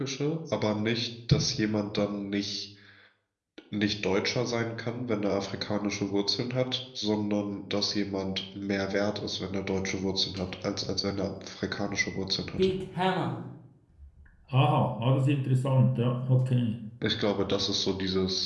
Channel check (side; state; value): both; identical; correlation 1.00